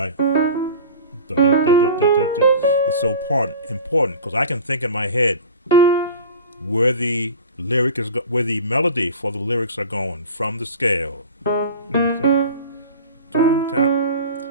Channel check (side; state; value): both; inverted; correlation -0.37